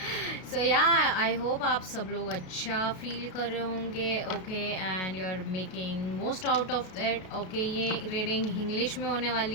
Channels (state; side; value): late; right; 33 ms